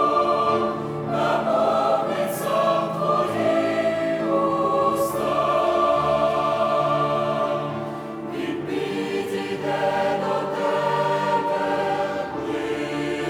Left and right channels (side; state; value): both; identical; correlation 1.00